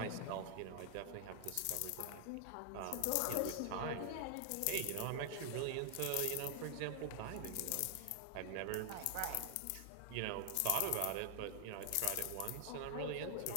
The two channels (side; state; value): both; different; correlation 0.00